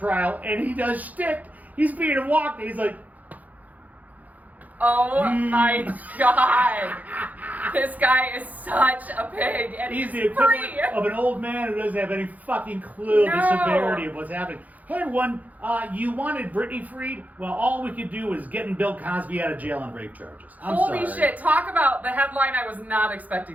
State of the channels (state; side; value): late; left; 0.078 ms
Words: and he does shtick. He's being walked, and he's like, oh my God. This guy is such a pig, and he's the free. equivalent of an old man who doesn't have any fucking clue of the severity of what's happening. Hey everyone, you wanted Britney freed? Well, all we could do is getting Bill Cosby out of jail on rape charges. Holy shit, talk about the headline I was not